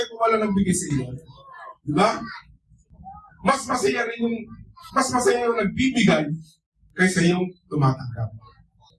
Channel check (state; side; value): identical; both; correlation 1.00